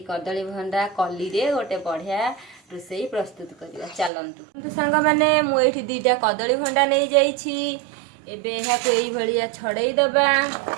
कदली भंडा कली रे गोटे बढ़िया रोसई प्रस्तुत करिबा। चलंतु सांग माने मु एठी दीटा कदली भंडा नहीं जाइछि। एबे एहा को एई भलिया छड़ेई दबा,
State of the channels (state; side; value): drops out; left; at 4.1 s